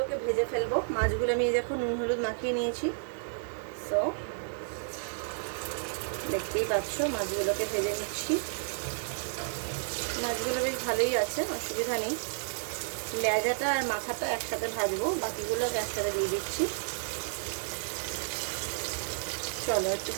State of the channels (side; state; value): left; silent; 57 dB below the other